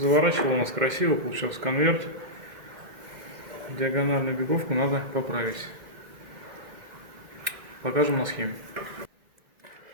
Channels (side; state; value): left; late; 2.1 ms